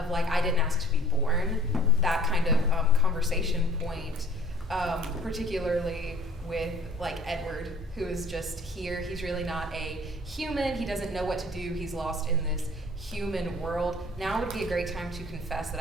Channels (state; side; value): normal; both; correlation 0.51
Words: like, I didn't ask to be born, that kind of conversation point, particularly with like Edward, who is just here. He's really not a human. He doesn't know what to do. He's lost in this human world. Now would be a great time to confess that